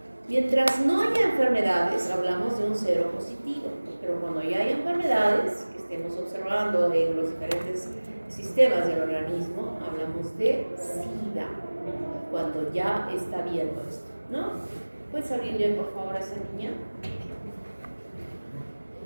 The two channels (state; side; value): inverted; both; correlation -1.00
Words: Mientras no haya enfermedades, hablamos de un cero positivo, pero cuando ya hay enfermedades que estemos observando en los diferentes sistemas del organismo, hablamos de SIDA, cuando ya está viendo esto, ¿no? ¿Puedes abrirle por favor a esa niña?